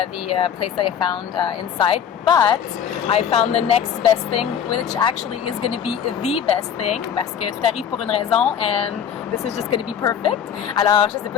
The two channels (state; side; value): quieter; right; 8.4 dB